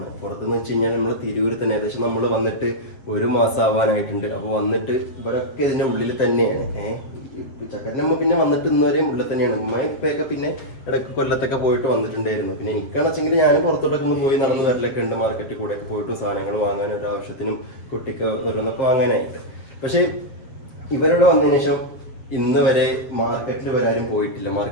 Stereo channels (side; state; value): right; late; 7.6 ms